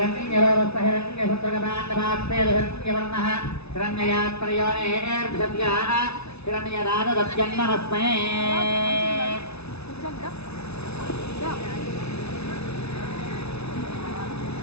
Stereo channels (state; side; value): late; right; 0.80 ms